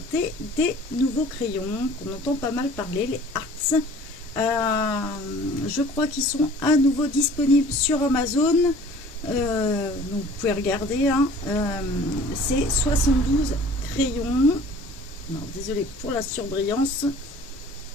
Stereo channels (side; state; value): both; normal; correlation 0.48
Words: des nouveaux crayons qu'on entend pas mal parler, les Arts. Je crois qu'ils sont à nouveau disponibles sur Amazon. Donc vous pouvez regarder, hein. C'est 72 crayons. Non, désolé pour la surbrillance.